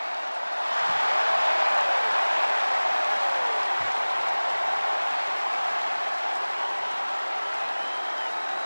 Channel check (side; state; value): both; inverted; correlation -1.00